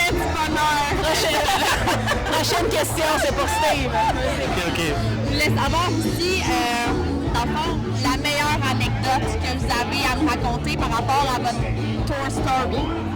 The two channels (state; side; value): identical; both; correlation 1.00